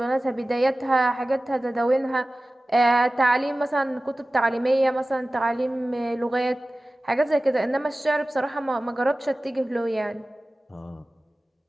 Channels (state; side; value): normal; both; correlation 0.97